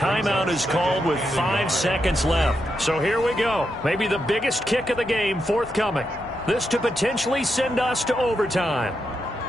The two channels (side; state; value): both; normal; correlation 0.84